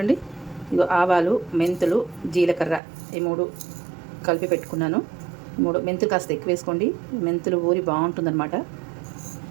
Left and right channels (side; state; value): left; drops out; at 2.8 s